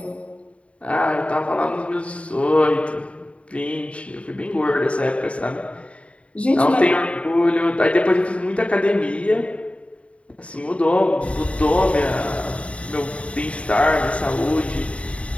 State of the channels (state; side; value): late; right; 0.063 ms